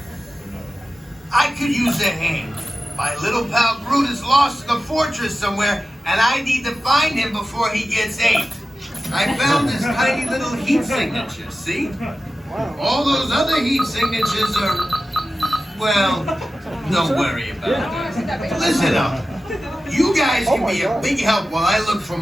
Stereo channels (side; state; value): both; normal; correlation 0.94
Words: I could use a hand. My little pal Groot is lost in the fortress somewhere, and I need to find him before he gets ate. I found this tiny little heat signature, see? All those other heat signatures are, well, don't worry about it. Listen up. You guys can be a big help while I look for